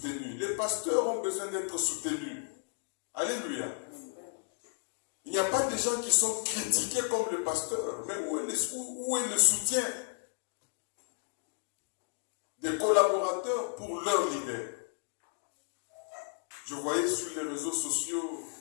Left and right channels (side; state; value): right; silent; 56 dB below the other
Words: Les pasteurs ont besoin d'être soutenus. Alléluia. Il n'y a pas de gens qui sont critiqués comme le pasteur, mais où est le soutien des collaborateurs pour leur leader? Je voyais sur les réseaux sociaux